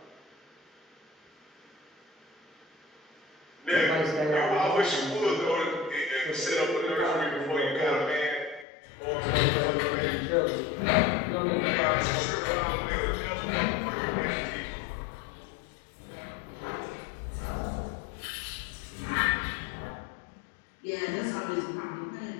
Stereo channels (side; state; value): right; drops out; at 8.7 s